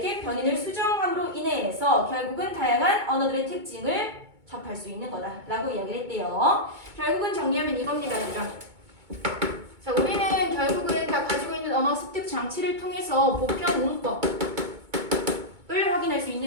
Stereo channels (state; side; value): late; left; 2.2 ms